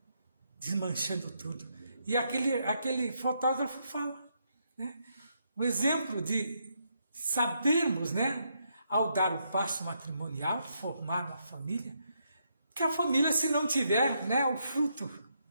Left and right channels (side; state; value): both; inverted; correlation -0.78